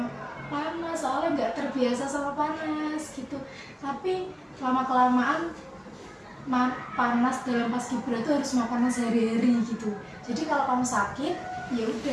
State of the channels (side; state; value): both; identical; correlation 1.00